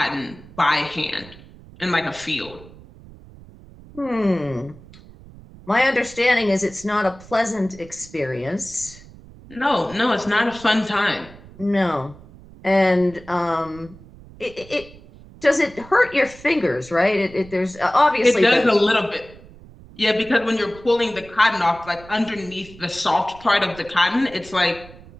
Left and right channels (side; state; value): right; noise; rumble, 20 dB below the sound